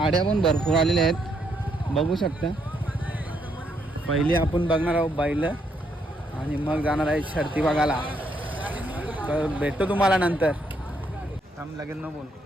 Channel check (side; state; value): both; normal; correlation 0.75